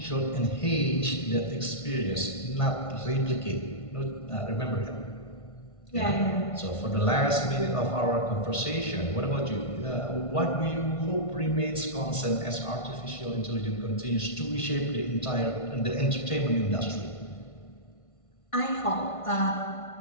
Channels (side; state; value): right; late; 1.5 ms